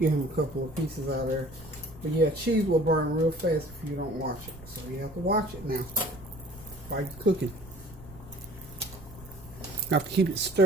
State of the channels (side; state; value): right; noise; rumble, 20 dB below the sound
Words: him a couple of pieces out of there. But yeah, cheese will burn real fast if you don't watch it. So you have to watch it now while you're cooking. You have to keep it